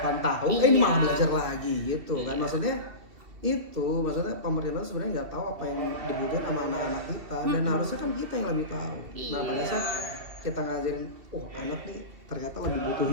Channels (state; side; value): late; left; 2.7 ms